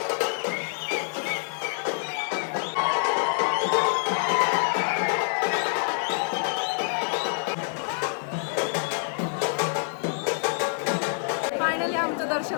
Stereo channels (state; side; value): silent; right; 61 dB below the other